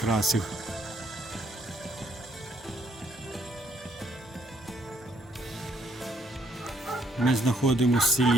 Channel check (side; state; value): both; normal; correlation 0.70